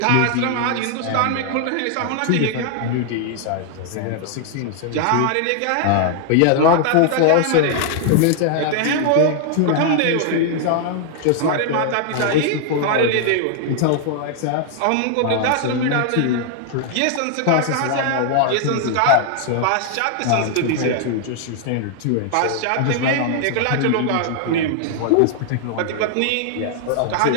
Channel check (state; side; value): different; both; correlation 0.00